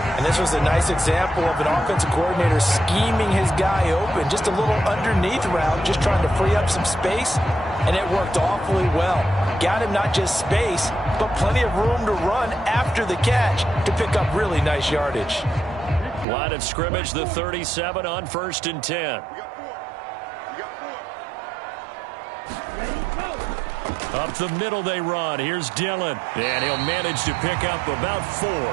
And this was a nice example of an offensive coordinator scheming his guy open. Just a little underneath route, just trying to free up some space, and it worked awfully well. Got him not just space, but plenty of room to run after the catch to pick up really nice yardage. Line of scrimmage, the 37 on 1st and 10. Up the middle they run. Here's Dillon. And he'll manage to pick up about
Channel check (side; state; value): left; drops out; at 16.2 s